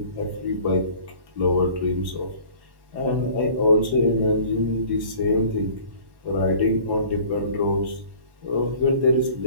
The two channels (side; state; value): left; late; 1.1 ms